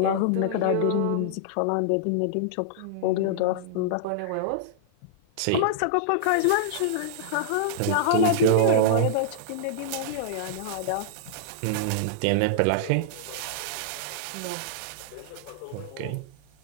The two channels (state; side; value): different; both; correlation -0.02